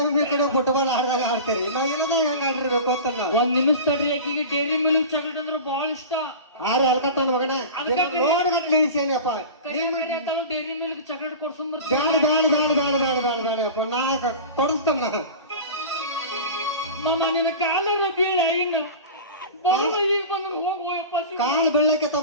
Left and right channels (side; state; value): both; inverted; correlation -0.32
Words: ಒಮ್ಮೆ ಈ ಕಡೆ ಫುಟ್ಬಾಲ್ ಆಡ್ದಾಗ ಆಡ್ತೀರಿ ನಾವ್ ಎಲ್ಲದ ಹೆಂಗ ಆಡಿರ್ಬೇಕು ಅಂತ ನಾವು ಒಂದ್ ನಿಮಿಷ ತಡ್ರಿ ಆಕಿಗೆ ಡೈರಿ ಮಿಲ್ಕ್ ಚಾಕ್ಲೇಟ್ ಅಂದ್ರೆ ಬಹಳ ಇಷ್ಟ ಆರೆ ಹಲ್ಕಟ್ ನನ್ನ ಮಗನ ನೋಡ್ಗಟ್ಲೆ ಇಳಿಸೇನಿಯಪ್ಪ ಡೈರಿ ಮಿಲ್ಕ್ ಚಾಕ್ಲೇಟ್ ಕೊಡ್ಸಂಬರ್ ಬೇಡಪ್ಪ ನಾ ಕೊಡಿಸ್ತೇನೆ ನಾ ಮಾಮ ನಿನ್ನ ಕಾಲರ ಬೀಳ ಹಿಂಗ ಬರೋದು ಈಗ ಬಂದ್ರೆ ಹೋಗಪ್ಪ ಕಾಲ್ ಬೆಳ್ಳಕ್ಕೆ